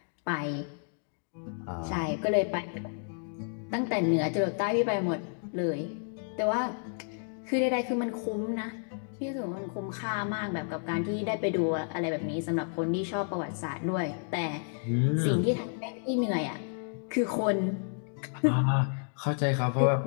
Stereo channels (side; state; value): right; silent; 57 dB below the other